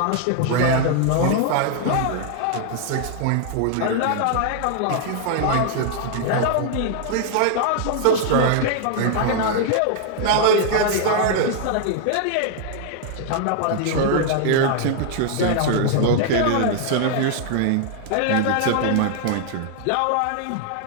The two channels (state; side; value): different; both; correlation 0.00